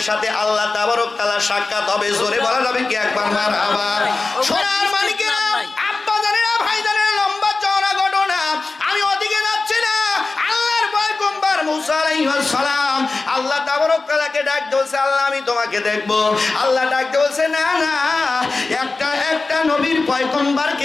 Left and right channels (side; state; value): right; quieter; 3.7 dB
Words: সাথে আল্লাহ তাবারক তাআলা সাক্ষাৎ হবে। জোরে বলা যাবে কি একবার মারহাবা? সোনার মালিকেরা, আব্বা জানেরা, ভাই জানেরা, লম্বা চওড়া ঘটনা, আমি ওদিকে যাচ্ছি না। আল্লাহর পয়গম্বর মুসা আলাইহিস সালাম আল্লাহ তাবারক তাআলাকে ডাক দিয়েছে, আল্লাহ আমি তোমাকে দেখব। আল্লাহ ডাক দিয়েছে, না না, একটা নবীর